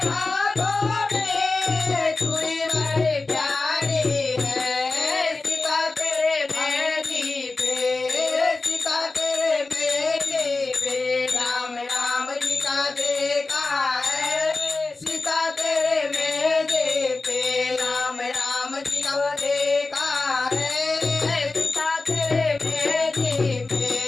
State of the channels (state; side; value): quieter; right; 3.6 dB